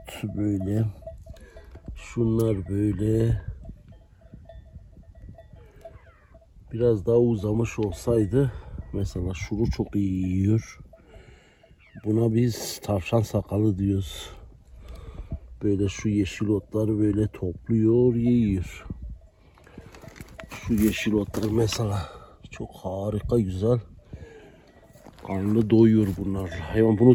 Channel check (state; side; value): identical; both; correlation 1.00